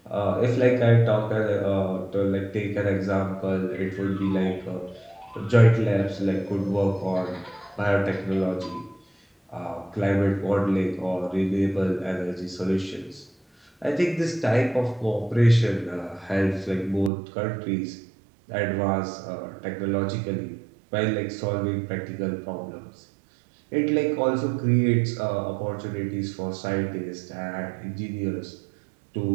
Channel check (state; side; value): drops out; left; at 17.1 s